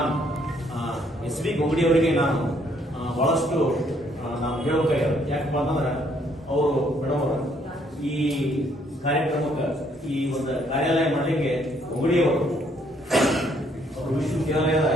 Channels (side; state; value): both; normal; correlation 0.67